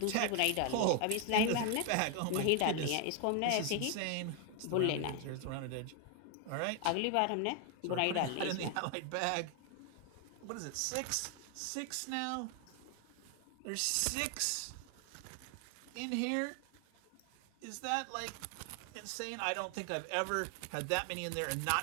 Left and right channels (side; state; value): both; different; correlation 0.01